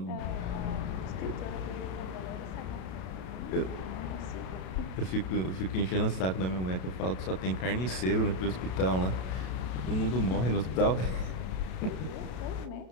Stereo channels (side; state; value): right; late; 32 ms